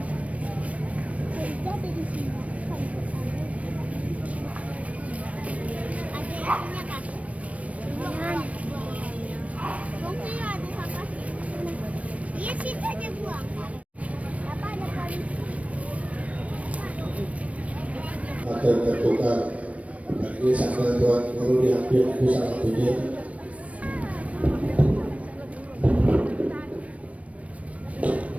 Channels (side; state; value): left; late; 0.065 ms